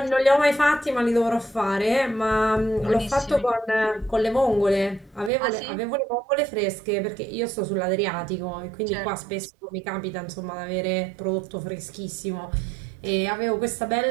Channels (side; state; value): left; drops out; at 5.3 s